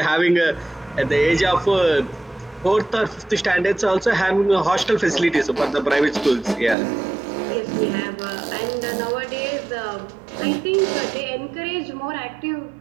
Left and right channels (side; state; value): left; drops out; at 6.8 s